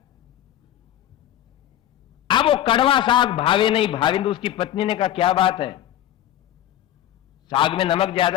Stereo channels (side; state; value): right; quieter; 12.3 dB